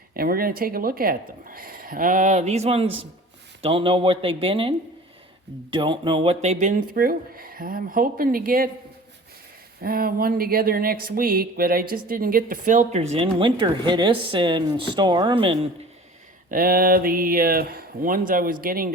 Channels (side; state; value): both; normal; correlation 0.42